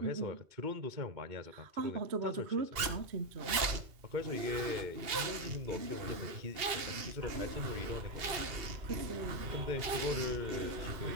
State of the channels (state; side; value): late; left; 2.8 ms